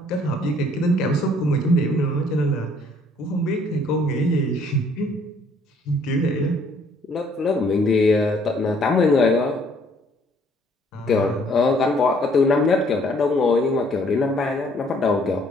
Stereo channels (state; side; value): normal; both; correlation 0.62